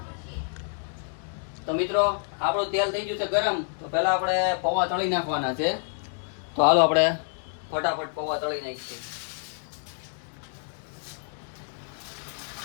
તો મિત્રો આપણું તેલ થઈ ગયું છે ગરમ, તો પહેલા આપણે પૌવા તળી નાખવાના છે। તો હાલો આપણે ફટાફટ પૌવા તળી નાખીએ।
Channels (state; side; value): silent; right; 59 dB below the other